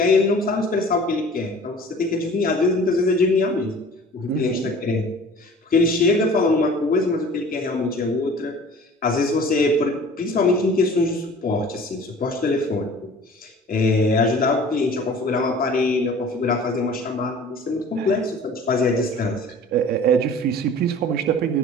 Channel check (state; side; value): normal; both; correlation 0.45